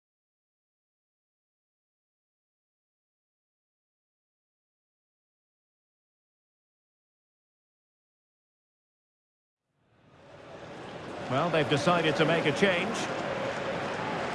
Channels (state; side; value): identical; both; correlation 1.00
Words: Well, they've decided to make a change.